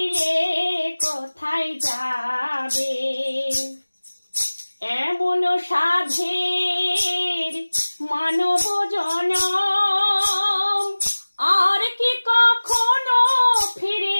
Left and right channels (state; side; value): inverted; both; correlation -1.00